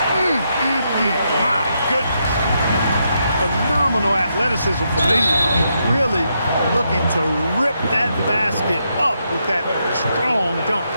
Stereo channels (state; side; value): inverted; both; correlation -0.80